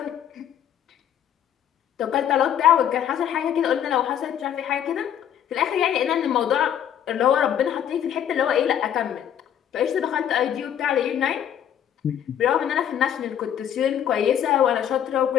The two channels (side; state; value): right; quieter; 9.8 dB